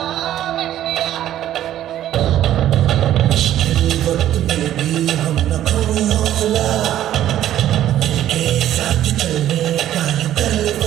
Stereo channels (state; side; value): quieter; left; 12.2 dB